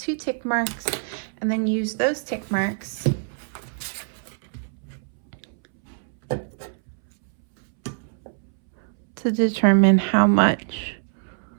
tick marks, and then use those tick marks to determine how much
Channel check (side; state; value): left; silent; 62 dB below the other